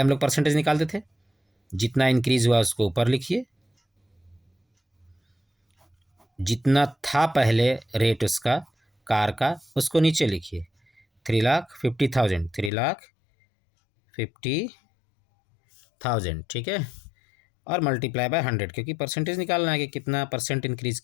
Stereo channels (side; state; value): right; drops out; at 12.7 s